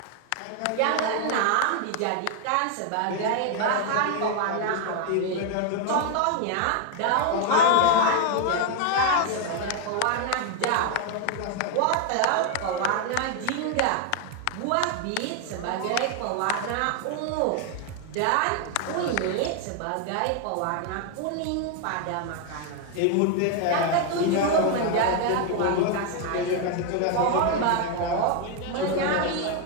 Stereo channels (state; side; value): different; both; correlation 0.00